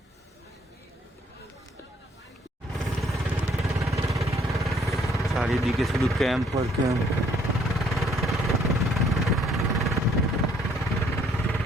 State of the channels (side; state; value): both; normal; correlation 0.64